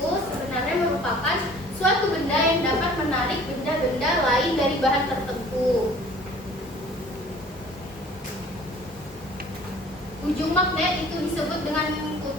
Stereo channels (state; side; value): normal; both; correlation 0.50